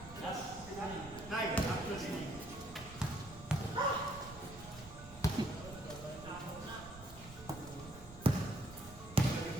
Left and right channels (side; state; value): right; noise; rumble, 15 dB below the sound